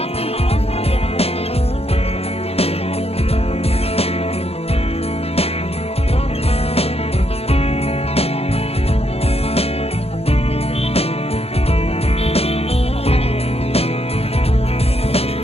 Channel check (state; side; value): late; right; 0.29 ms